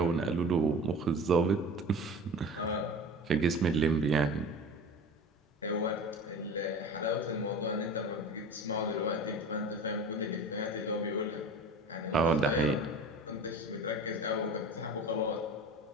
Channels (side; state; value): both; normal; correlation 0.36